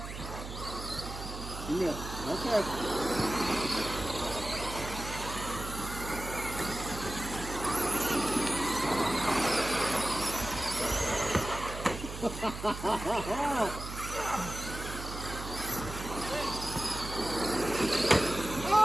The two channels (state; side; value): noise; right; hum, 9 dB below the sound